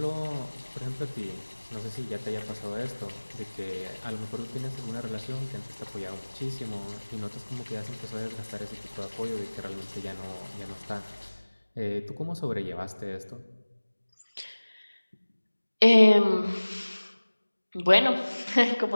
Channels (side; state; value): both; inverted; correlation -1.00